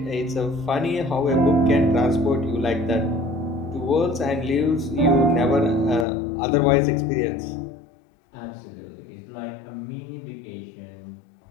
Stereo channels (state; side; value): drops out; right; at 6.1 s